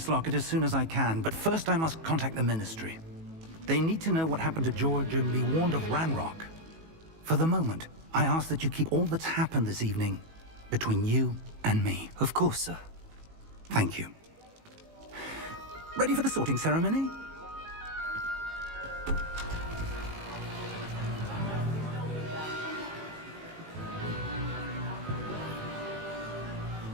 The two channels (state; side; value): late; left; 18 ms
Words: locket as soon as I can, but first I must contact the Ministry. They need to know what happened to George and be warned of Ranrock. For the moment, I ask that you keep all that's happened this evening between you and me. Of course, sir. Thank you. Ready for the sorting ceremony?